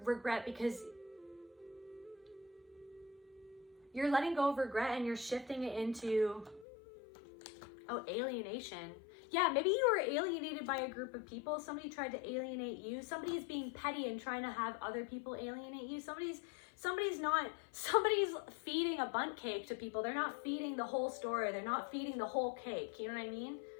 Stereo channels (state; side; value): drops out; right; at 6.7 s